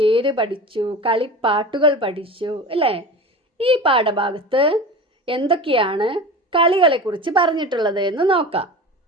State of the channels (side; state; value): both; normal; correlation 0.32